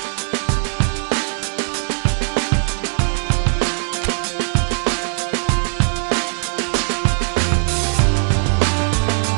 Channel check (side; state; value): left; silent; 57 dB below the other